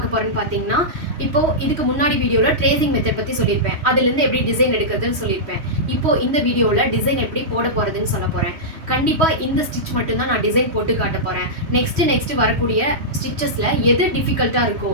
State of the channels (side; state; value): left; late; 3.1 ms